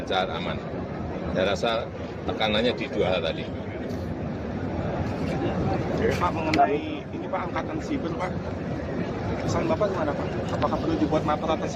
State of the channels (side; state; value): both; identical; correlation 1.00